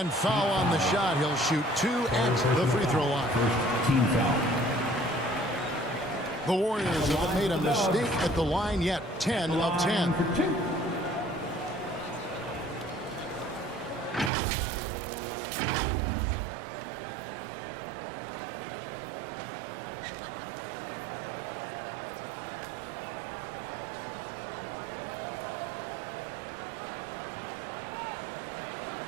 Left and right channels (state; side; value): drops out; left; at 14.3 s